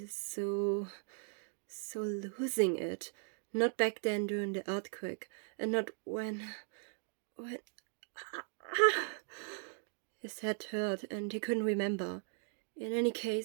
so losing it. Not back then during the earthquake, and not when... His head hurt, and he couldn't remember. In any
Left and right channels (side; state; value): left; silent; 52 dB below the other